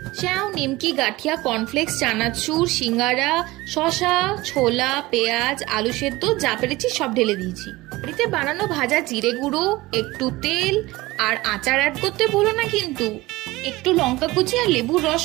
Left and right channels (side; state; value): left; quieter; 19.9 dB